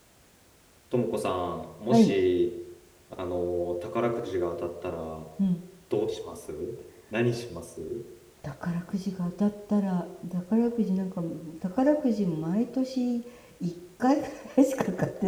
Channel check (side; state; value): both; identical; correlation 1.00